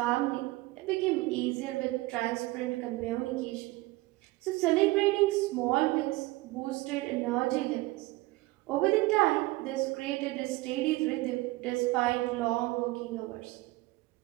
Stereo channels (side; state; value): left; quieter; 20.8 dB